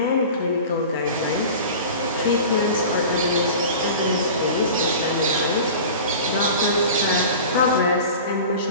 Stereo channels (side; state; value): both; inverted; correlation -0.37